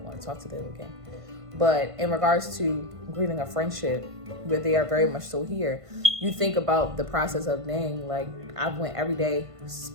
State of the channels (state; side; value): late; left; 1.5 ms